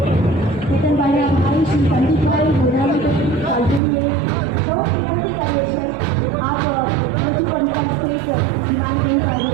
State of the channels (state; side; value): drops out; left; at 3.8 s